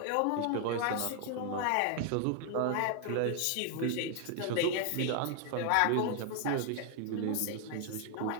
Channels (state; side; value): different; both; correlation 0.00